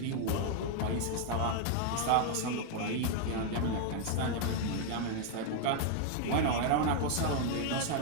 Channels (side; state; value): both; different; correlation 0.00